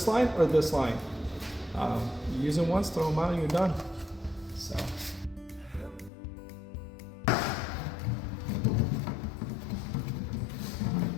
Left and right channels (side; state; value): right; drops out; at 6.1 s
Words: line or this line. You use them once, throw them out, and you're done. So.